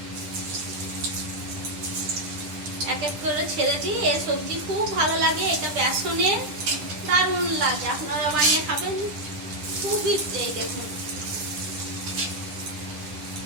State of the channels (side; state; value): left; late; 10 ms